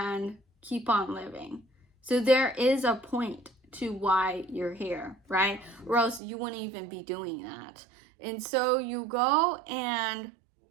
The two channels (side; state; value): left; drops out; at 6.2 s